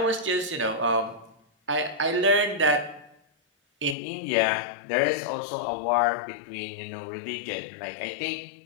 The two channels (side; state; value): right; drops out; at 4.0 s